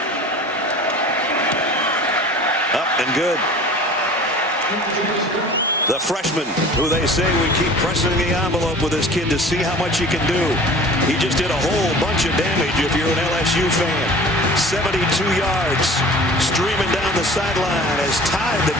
Up and good. The freshman, who they say we keep pressing the envelope with this kid to see how much he can do. He just did a whole bunch of damage if you're an LSU fan. 72 yards streaming down the sideline has tied the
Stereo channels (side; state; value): both; normal; correlation 0.43